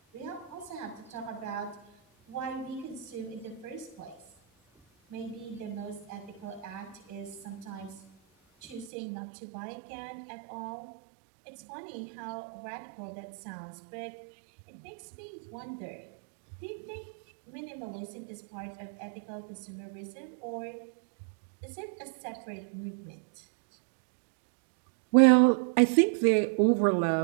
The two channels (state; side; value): drops out; left; at 8.9 s